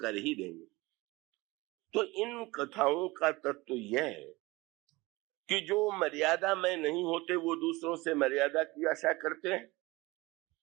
ही देंगे। तो इन कथाओं का तत्व यह है कि जो मर्यादा में नहीं होते वो दूसरों से मर्यादा की आशा करते हैं,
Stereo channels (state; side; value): quieter; left; 21.9 dB